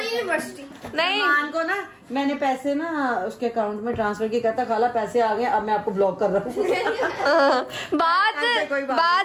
यूनिवर्सिटी नहीं सलमान को ना मैंने पैसे ना उसके अकाउंट में ट्रांसफर किया, कहता खाला पैसे आ गए, अब मैं आपको ब्लॉक कर रहा हूँ।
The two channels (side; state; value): both; identical; correlation 1.00